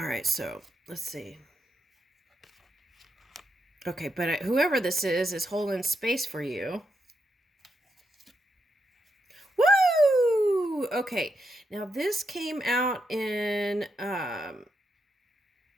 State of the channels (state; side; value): normal; both; correlation 0.82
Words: right, so let's see. Okay, but whoever this is holding space for you. Woo! Okay, now this came out in the